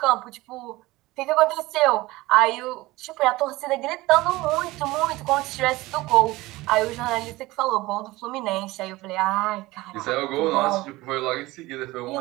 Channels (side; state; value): left; quieter; 19.7 dB